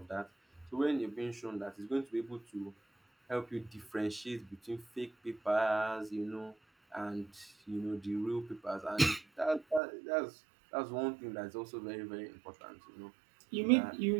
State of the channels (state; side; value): drops out; left; at 9.8 s